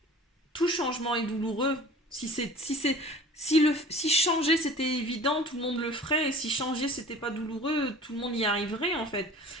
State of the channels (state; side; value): normal; both; correlation 0.44